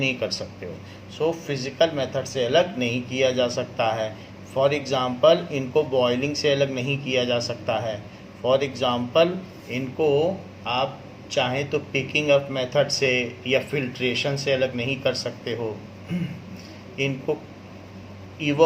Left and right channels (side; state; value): both; identical; correlation 1.00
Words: कर सकते हो। सो फिज़िकल मेथड से अलग नहीं किया जा सकता है। फॉर एग्ज़ाम्पल इनको बॉयलिंग से अलग नहीं किया जा सकता है। फॉर एग्ज़ाम्पल इनको आप चाहें तो पिकिंग अप मेथड से या फिल्ट्रेशन से अलग नहीं कर सकते हो। इनको